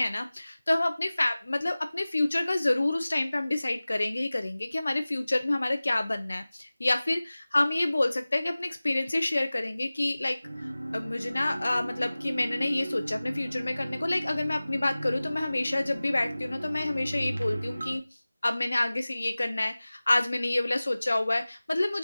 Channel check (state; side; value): inverted; both; correlation -0.98